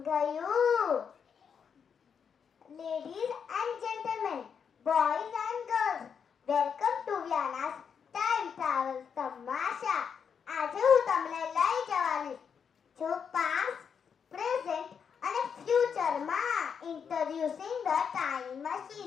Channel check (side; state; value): right; quieter; 6.9 dB